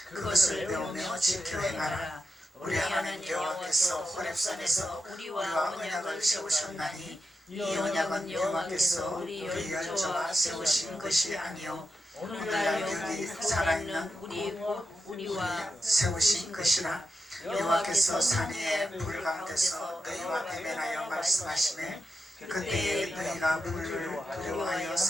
그것을 배우며 지켜 행하라. 우리 하나님 여호와께서 호렙산에서 우리와 언약을 세우셨나니 이 언약은 여호와께서 우리 열조와 세우신 것이 아니요 오늘날 여기 살아있는 우리와 세우신 것이라. 여호와께서 산 위에 불 가운데서 너희와 대면하여 말씀하시매 그때에 너희가 불을 두려워하여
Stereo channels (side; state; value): both; normal; correlation 0.88